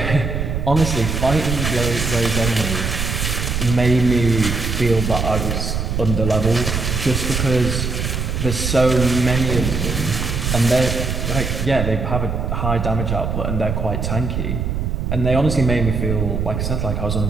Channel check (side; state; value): right; noise; rumble, 2 dB below the sound